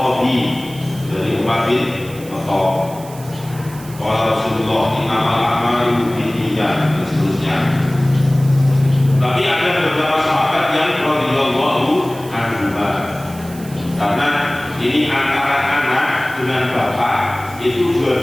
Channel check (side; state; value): right; noise; hiss, 19 dB below the sound